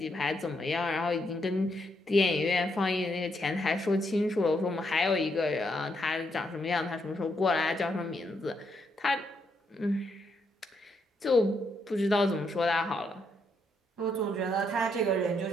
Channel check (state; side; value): normal; both; correlation 0.77